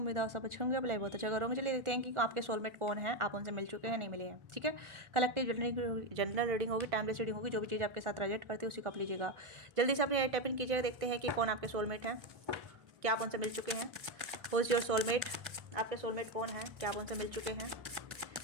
है आप सब अच्छे होंगे। अप्लाई बहुत अच्छा करोगे। चलिए देखते हैं कि आपके सोलमेट कौन है, आप उनसे मिल चुके हैं नहीं मिले हैं। ठीक है, कलेक्टिव जनरल रीडिंग होगी, टाइमलेस रीडिंग होगी। जो भी चीज़ आपके साथ रिलेट करती है उसी को आप लीजिएगा। जल्दी से अपने टाइप इन कीजिएगा, देखते हैं कि कौन आपके सोलमेट हैं, क्या आप उनसे मिल चुके हैं। हु इज़ योर सोलमेट, आपके सोलमेट कौन है, क्या आप उनसे मिल चुके हैं।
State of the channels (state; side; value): late; left; 1.5 ms